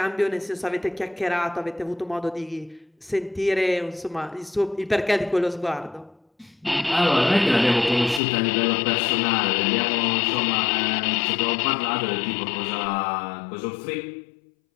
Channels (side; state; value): right; drops out; at 8.2 s